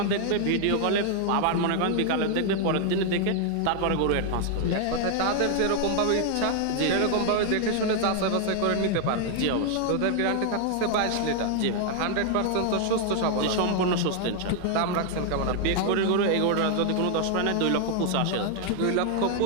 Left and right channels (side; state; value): both; different; correlation 0.00